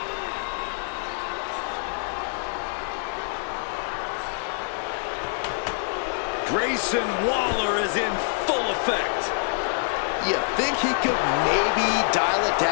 Grayson Waller is in full effect. You think he could maybe dial it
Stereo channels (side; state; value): right; silent; digital silence